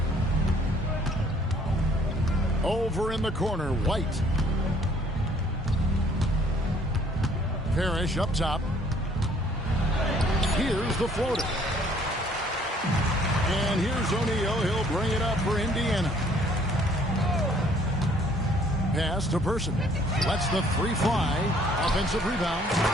Over in the corner, White. Parrish up top. Here's the floater. And here's O'Neal. He'll bring it up for Indiana. Pass to Person. Lets the 3 fly. Offensive rebound.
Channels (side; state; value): both; normal; correlation 0.60